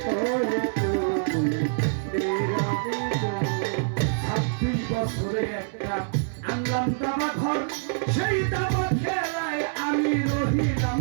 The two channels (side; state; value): left; silent; digital silence